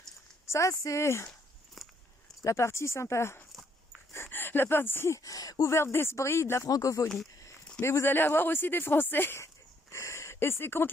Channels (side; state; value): both; normal; correlation 0.69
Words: Ça, c'est la partie sympa, la partie ouverte d'esprit de la francophonie. Mais vous allez avoir aussi des Français. Et c'est